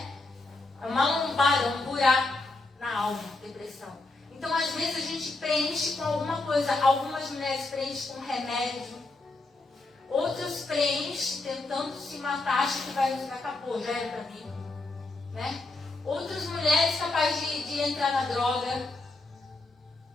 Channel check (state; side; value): quieter; right; 3.2 dB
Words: É uma lombada, um buraco na alma, depressão. Então, às vezes, a gente preenche com alguma coisa. Algumas mulheres preenchem com remédio. Outras preenchem tentando se matar, acham que acabou, já era pra mim. Né? Outras mulheres capazes de entrar na droga.